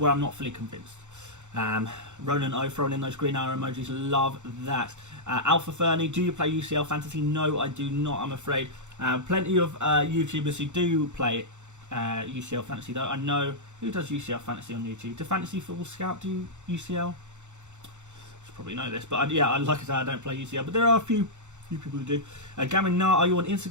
where I'm not fully convinced. Ronan O throwing in those green arrow emojis. Love that. Alpha Fernie, do you play UCL Fantasy? No, I do not, I'm afraid. Plenty of YouTubers who do play UCL Fantasy though. I know who does UCL Fantasy on YouTube. Do Fantasy Football Scout do UCL? You probably know this, but yeah, like I said, I don't play UCL, but there are a few people who do. Gamin Nar, are you on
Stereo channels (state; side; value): late; left; 0.84 ms